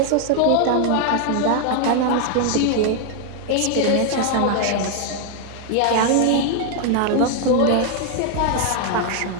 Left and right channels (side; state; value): both; different; correlation 0.00